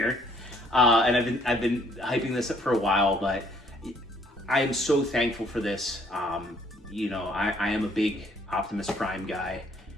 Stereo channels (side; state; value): both; normal; correlation 0.64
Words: And I've been hyping this up for a while, but I am so thankful for this. You know, I am a big Optimus Prime guy,